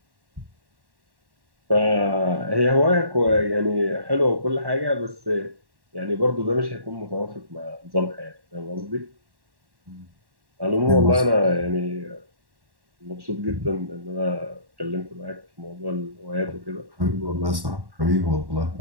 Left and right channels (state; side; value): late; left; 1.1 ms